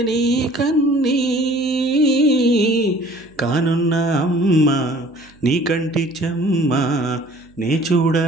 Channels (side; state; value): right; noise; hum, 29 dB below the sound